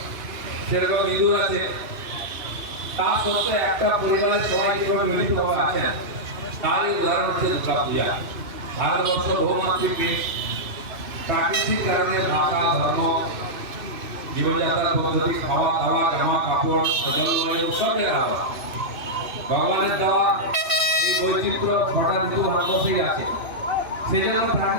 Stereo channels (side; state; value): left; late; 3.0 ms